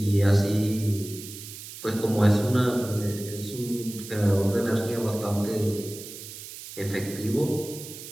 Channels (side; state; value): right; noise; hiss, 13 dB below the sound